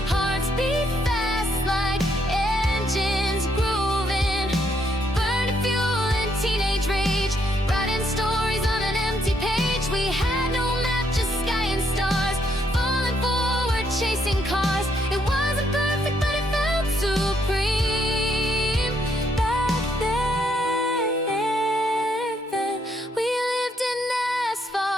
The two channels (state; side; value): normal; both; correlation 0.73